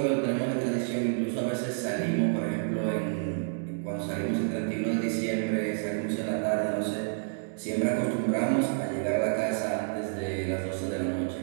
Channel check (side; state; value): left; silent; digital silence